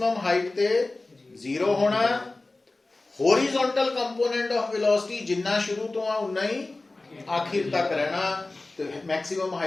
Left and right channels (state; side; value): quieter; right; 3.1 dB